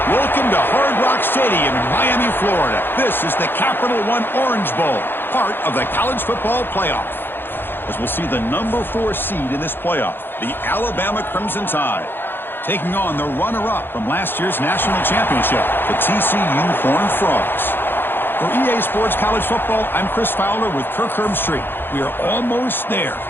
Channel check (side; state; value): right; late; 0.10 ms